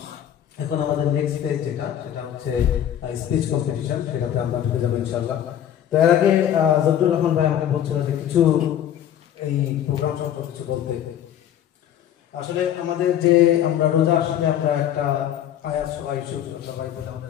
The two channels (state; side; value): quieter; right; 10.5 dB